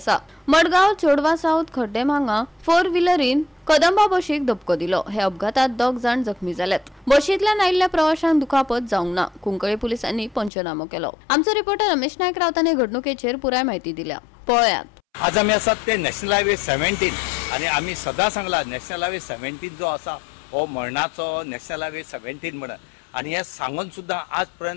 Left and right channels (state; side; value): drops out; right; at 10.5 s